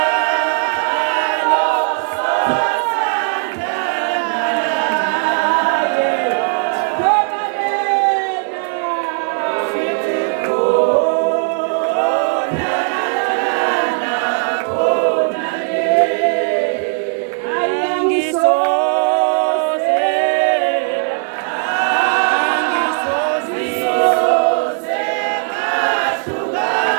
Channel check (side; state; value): left; silent; 58 dB below the other